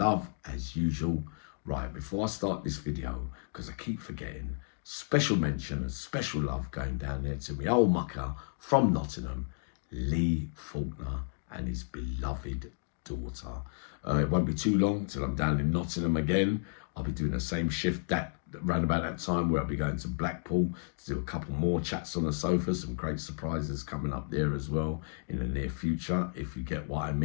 as usual. Right, before I start this video, because I keep forgetting, special mention and special love going down there to my old mucker from Nottingham, Lee Faulkner, and his beloved daughter. It won't be too long till I'm down in Nottingham again. I'll be doing the same shift around about that time, where I'll be going to Blackpool to do a couple more chats on the sofa. Some great surprises coming up there as well in the near future, if you get what I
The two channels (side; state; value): right; silent; digital silence